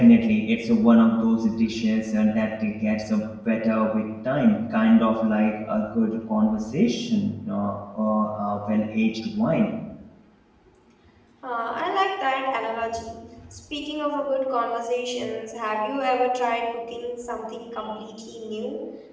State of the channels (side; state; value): both; identical; correlation 1.00